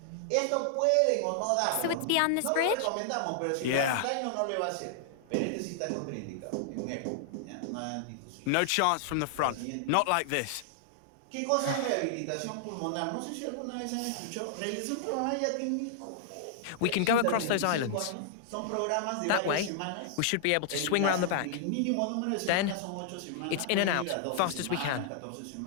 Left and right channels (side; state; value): both; different; correlation -0.01